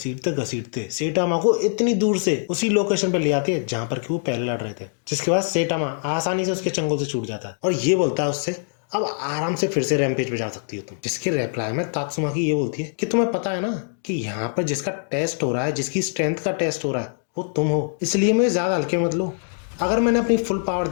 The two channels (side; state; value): right; silent; 63 dB below the other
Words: घसीटते सेटामा को इतनी दूर से उसी लोकेशन पे ले आती है जहाँ पर कि वो पहले लड़ रहे थे, जिसके बाद सेटामा आसानी से उसके चंगुल से छूट जाता है और ये बोलता है उससे, अब आराम से फिर से रैम्पेज पे जा सकती हो तुम। जिसके रिप्लाई में तात्सुमाकी ये बोलती है कि तुम्हें पता है ना कि यहाँ पर जिसका टेस्ट हो रहा है, जिसकी स्ट्रेंथ का टेस्ट हो रहा है, वो तुम हो, इसलिए मुझे ज्यादा हल्के मत लो। अगर मैंने अपनी फुल पावर